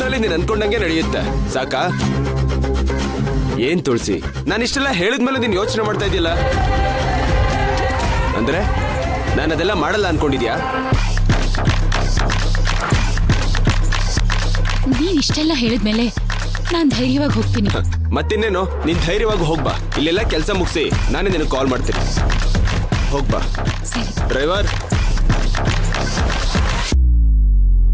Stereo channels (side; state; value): both; identical; correlation 1.00